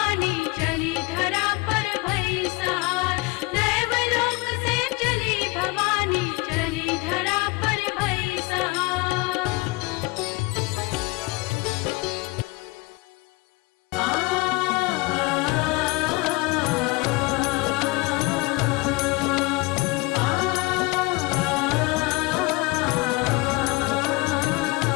चली धरा पर भई सहार। दैवलोक से चली भवानी, चली धरा पर भई सहार।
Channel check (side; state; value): right; quieter; 24.1 dB